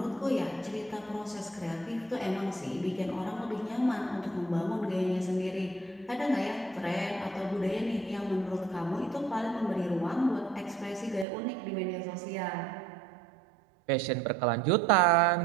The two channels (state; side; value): drops out; left; at 11.2 s